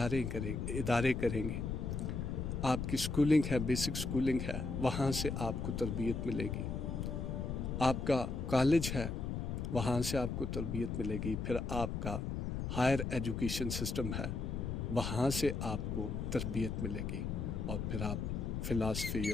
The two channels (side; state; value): left; noise; rumble, 3 dB below the sound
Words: करेंगे। आपकी स्कूलिंग है, बेसिक स्कूलिंग है, वहाँ से आपको तरबियत मिलेगी। आपका कॉलेज है, वहाँ से आपको तरबियत मिलेगी। फिर आपका हायर एजुकेशन सिस्टम है, वहाँ से आपको तरबियत मिलेगी। और फिर आप फ़िलासफ़ी